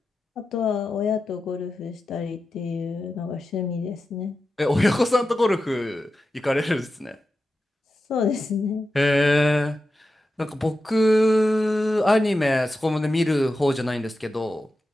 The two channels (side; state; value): both; normal; correlation 0.91